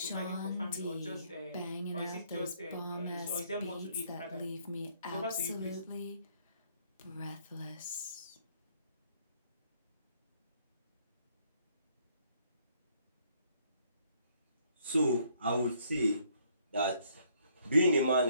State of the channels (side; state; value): both; inverted; correlation -0.67